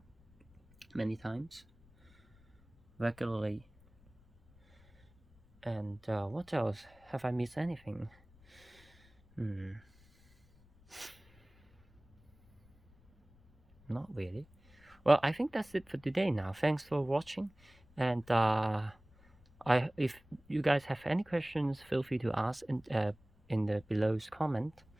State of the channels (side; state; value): left; noise; rumble, 28 dB below the sound